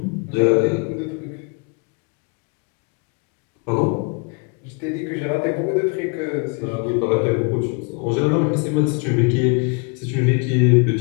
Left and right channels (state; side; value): quieter; right; 34.2 dB